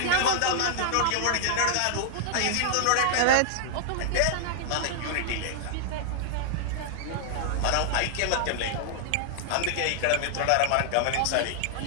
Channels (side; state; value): both; different; correlation -0.01